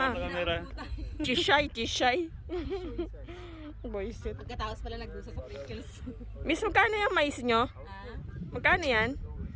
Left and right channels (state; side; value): identical; both; correlation 1.00